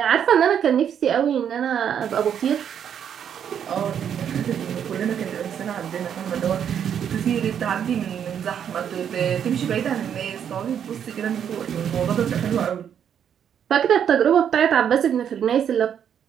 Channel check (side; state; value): left; quieter; 8.7 dB